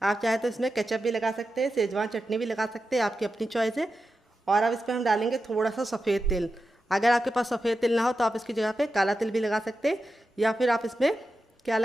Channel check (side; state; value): both; normal; correlation 0.90